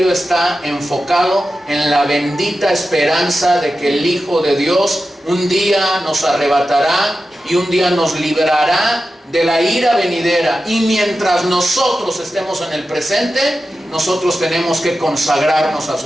está enfocado en la bendita esperanza de que el Hijo de Dios un día nos arrebatará y un día nos librará de la ira venidera. Y mientras nosotros estemos en el presente, nosotros tenemos que consagrarnos a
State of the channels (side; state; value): both; normal; correlation 0.92